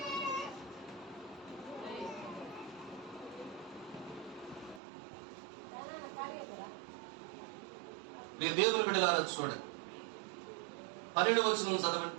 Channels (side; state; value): left; drops out; at 4.8 s